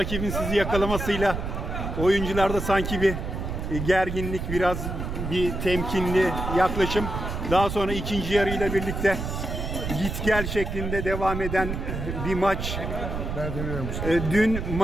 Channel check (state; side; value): noise; right; rumble, 4 dB below the sound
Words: sizi yakalamasıyla oyuncularda sanki bir gerginlik, biraz bir temkinli yaklaşım. Daha sonra ikinci yarıyla birlikte git gel şeklinde devam eden bir maç. Dün